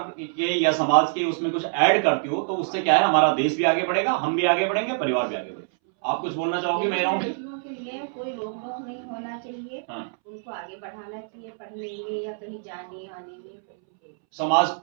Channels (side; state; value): left; silent; 62 dB below the other